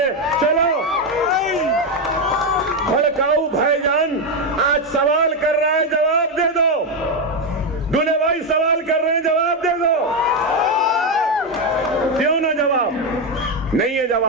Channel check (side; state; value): both; normal; correlation 0.07